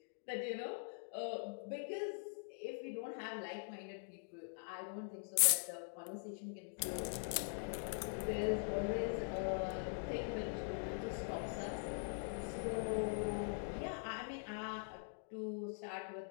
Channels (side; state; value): right; silent; digital silence